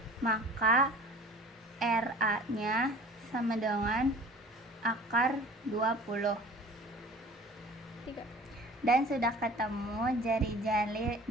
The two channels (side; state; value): both; normal; correlation 0.44